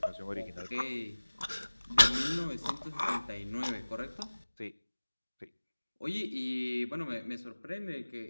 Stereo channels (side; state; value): both; inverted; correlation -1.00